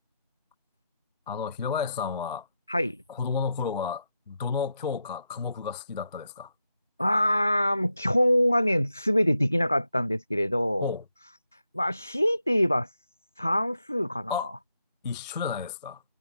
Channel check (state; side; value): inverted; both; correlation -0.85